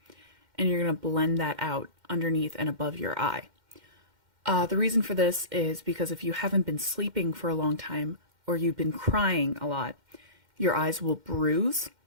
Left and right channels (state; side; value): late; left; 2.1 ms